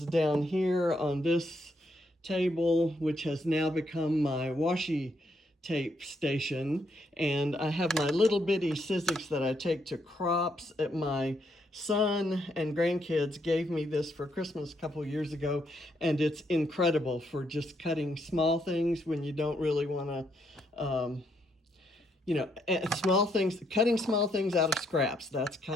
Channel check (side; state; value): both; normal; correlation 0.75